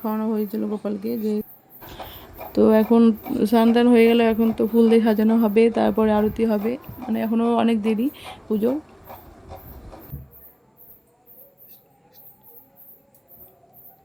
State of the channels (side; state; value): both; identical; correlation 1.00